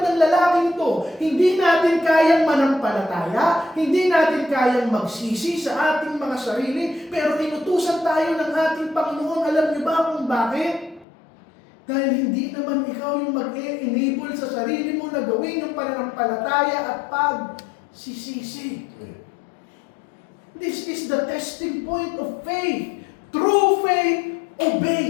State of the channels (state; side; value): drops out; right; at 11.1 s